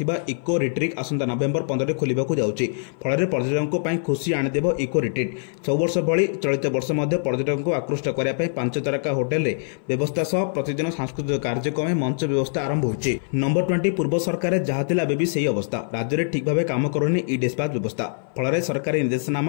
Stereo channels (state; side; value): silent; right; 58 dB below the other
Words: इको रिट्रीट आसंता नवेम्बर 15 खोलिबाकू जाउछि। फल पर्यटकों पर खुशी आनीदेव इको रिट्रीट। सब वर्ष भली चलित वर्ष पर्यटकों को आकृष्ट करने 5 तारका होटेल रे व्यवस्था सह प्रतिदिन सांस्कृतिक कार्यक्रम मंच व्यवस्था आरंभ होइछि। नंबर 20 पूर्व सरकार जहाँ थिला बेबी सही अवस्था राज्य में ठीक भाव काम करुनी ई डिस्पाच व्यवस्था। फल सरकारी